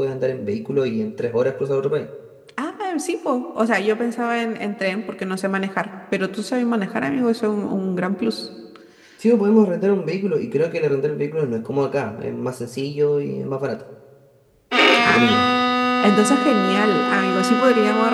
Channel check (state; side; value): identical; both; correlation 1.00